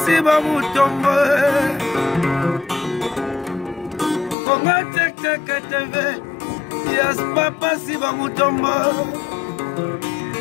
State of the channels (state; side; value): drops out; right; at 4.4 s